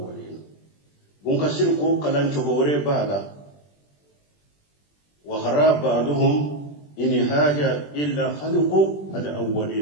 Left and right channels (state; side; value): late; right; 20 ms